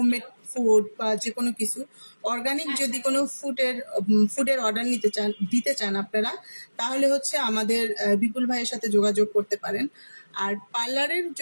ফুড বা যে কোনো কিছু অর্গানিক যদি কোনো ফুডের অর্ডার দিতে চান আপনারা, তাহলে হচ্ছে আমাদের বিপুল ভাইয়ের সাথে যোগাযোগ করতে পারেন। আর পার্লারের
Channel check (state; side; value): inverted; both; correlation -1.00